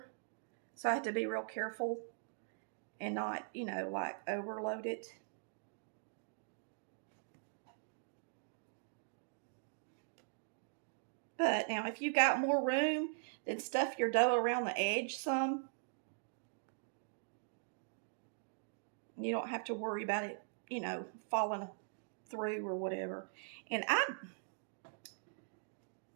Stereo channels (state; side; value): silent; left; digital silence